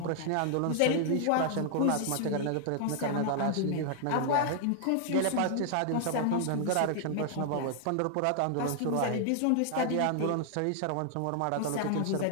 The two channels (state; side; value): different; both; correlation 0.00